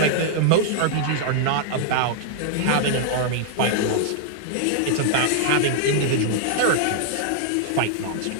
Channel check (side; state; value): both; different; correlation -0.01